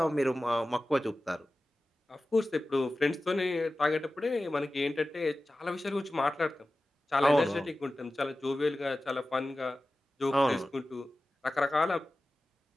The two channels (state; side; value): normal; both; correlation 0.95